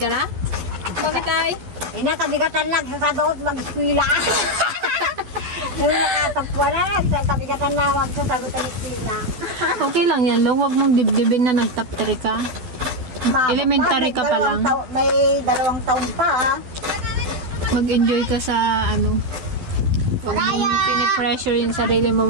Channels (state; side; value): late; left; 12 ms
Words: na? Bakit ay? Kabigatan lang sa sabaot mag-eskwila. Yung nakatapwa na, kabigatan na magsasagot ang eskwila. Okay lang yan, Long. Huwag mong dibdibin na nag-top 3 ka. Elementary ka pa lang. May 2 taon pa. Mag-enjoy ka sa pinipressure yung sarili mo